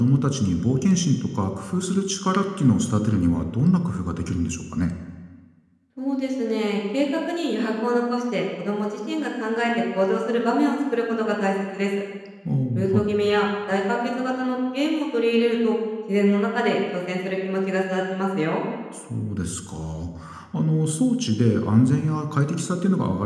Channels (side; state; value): both; identical; correlation 1.00